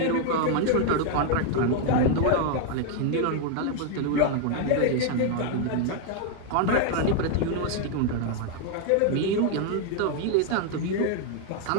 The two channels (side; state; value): both; different; correlation 0.00